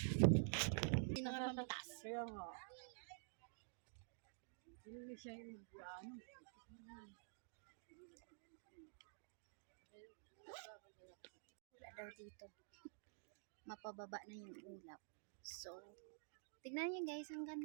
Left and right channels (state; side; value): silent; left; digital silence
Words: Sino nga mamatas? Kaya nga. Hindi siya yung mag-ano. Wala daw dito. Mapababa na yung ulap. So, tignan niyo guys, ang